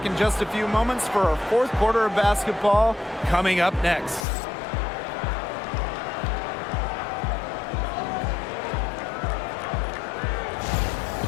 in just a few moments for our 4th quarter of basketball coming up next.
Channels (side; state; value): right; drops out; at 4.2 s